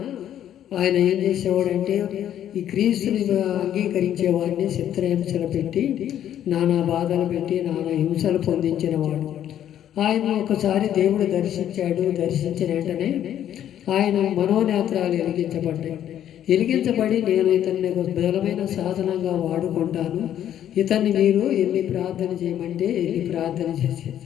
ఆయన ఏం చేసేవాడంటే ఈ క్రీస్తుని అంగీకరించే వాడిని చిత్రహింసలు పెట్టి, నానా బాధలు పెట్టి, నానా హింసలు పొందించినవాడు. ఆయన ఒకసారి దేవుడు దర్శించిన వెంటనే ఆయన మనోనేత్రాలు వెలిగించబడి నేను ఇతన్ని ఒక బలమైన సాధనంగా వాడుకుంటాను, ఇతన్ని మీరు ఎన్ని ప్రార్థన చేయమంటే ఎన్ని ప్రార్థన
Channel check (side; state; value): right; quieter; 10.7 dB